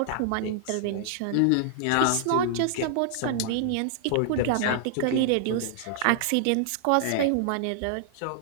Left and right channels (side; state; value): both; different; correlation -0.01